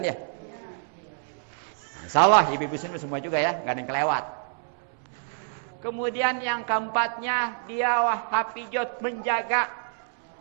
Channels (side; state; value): left; silent; 60 dB below the other